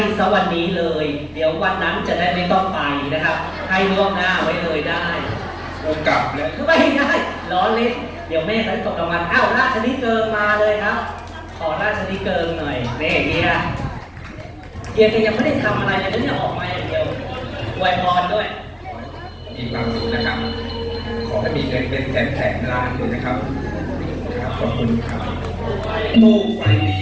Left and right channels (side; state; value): both; identical; correlation 1.00